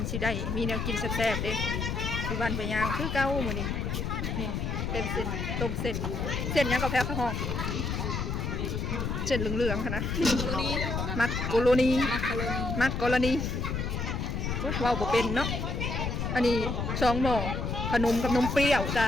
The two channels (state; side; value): noise; left; rumble, 2 dB below the sound